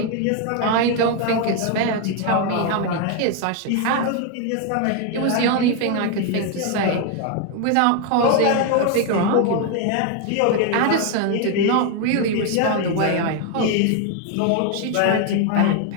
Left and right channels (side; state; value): both; different; correlation 0.01